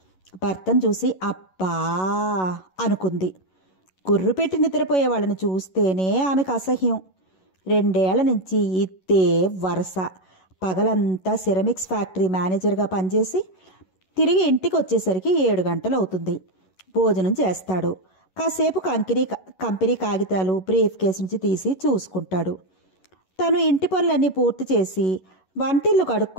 భర్తను చూసి అబ్బా అనుకుంది. గుర్రు పెట్టి నిద్రపోయే వాళ్ళని చూస్తేనే ఆమెకు అసహ్యం. 2 ఏళ్ల నుంచి ఇద్దే వరస. పగలంతా సిరమిక్స్ ఫ్యాక్టరీ మేనేజర్గా పనిచేసి తిరిగి ఇంటికి వచ్చేసరికి 7 గంటలు అవుతుంది. భోజనం చేస్తాడు. కాసేపు కంపెనీ కాగితాలు బ్రీఫ్ కేసు నుంచి తీసి చూసుకుంటాడు. తను ఇంటి పనులన్నీ పూర్తి చేసి వంటిల్లు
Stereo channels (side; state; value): right; late; 11 ms